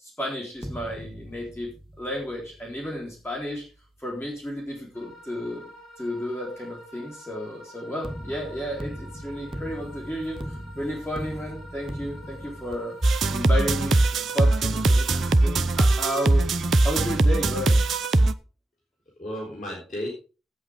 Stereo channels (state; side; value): normal; both; correlation 0.89